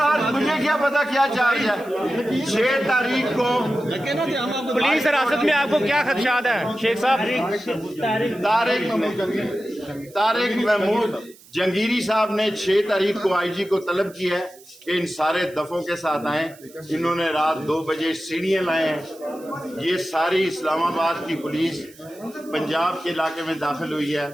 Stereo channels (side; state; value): right; noise; hiss, 24 dB below the sound